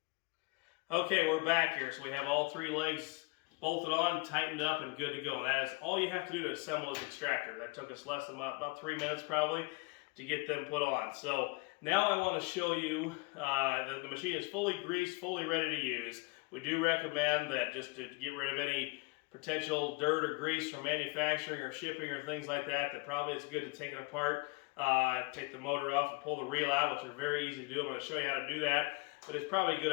Okay, we're back here. So we have all 3 legs bolted on, tightened up, and good to go. And that is all you have to do to assemble this Extractor. That took us less than about 3 minutes probably to get them put on. So now I want to show you, the machine is fully greased, fully ready to use. We do recommend that just to get rid of any potential dirt or grease from manufacturing or shipping or things like that, that probably it's good to take it apart, take the motor off and pull the reel out, which are very easy to do. I'm going to show you how to do that. But it's probably a good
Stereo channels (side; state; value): right; quieter; 27.3 dB